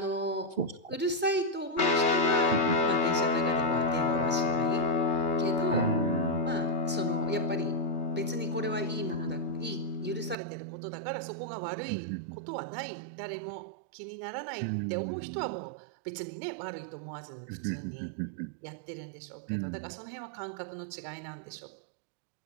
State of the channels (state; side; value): drops out; left; at 10.4 s